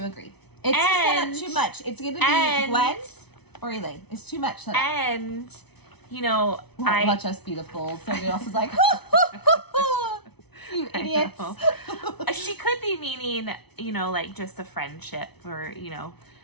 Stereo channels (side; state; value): right; late; 0.99 ms